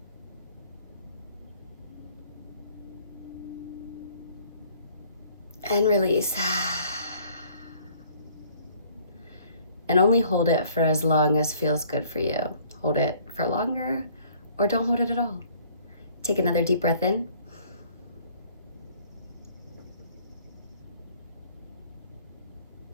and release. And only hold it for as long as feels good for you. Hold it for longer or don't hold it at all. Take another deep breath in.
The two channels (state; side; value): inverted; both; correlation -0.57